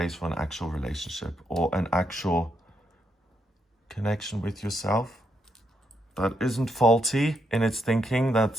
for an actual relationship or an actual connection with yourself that isn't faulty in its thinking,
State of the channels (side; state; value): both; normal; correlation 0.79